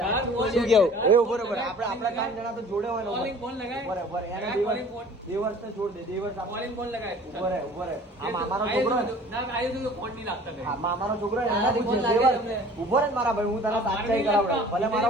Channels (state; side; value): normal; both; correlation 0.48